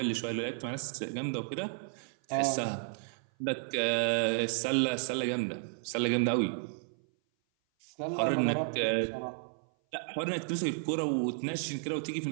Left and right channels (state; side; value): silent; left; 56 dB below the other